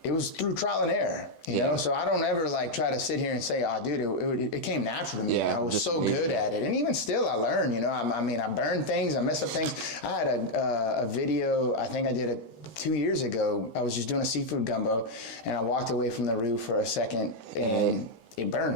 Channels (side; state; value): right; late; 13 ms